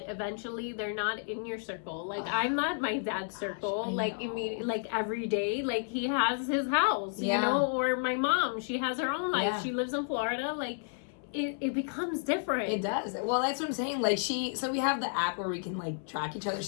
eventually they're not in your circle. Like, I'm not my dad's circle. Like, immediately, like every day, like he has his house, you know, or my mom, she has her own life. Yeah. She lives in Florida. Like, it becomes different. It does. Well, that's what I'm saying. Like, so we have the app where we can like track each other.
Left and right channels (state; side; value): silent; right; 57 dB below the other